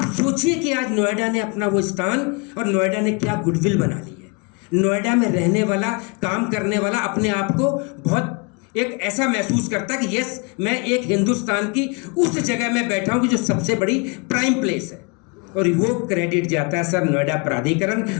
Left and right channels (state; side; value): quieter; right; 32.2 dB